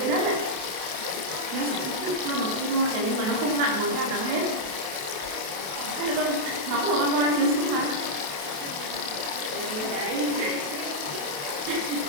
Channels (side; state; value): left; late; 28 ms